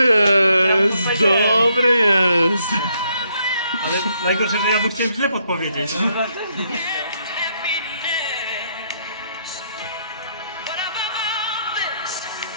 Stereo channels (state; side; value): inverted; both; correlation -0.73